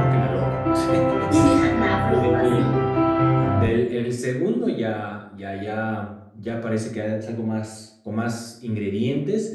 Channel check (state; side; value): identical; both; correlation 1.00